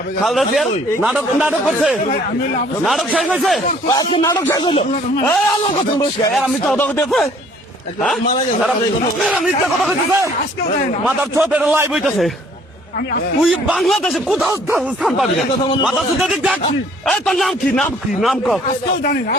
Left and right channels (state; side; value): normal; both; correlation 0.58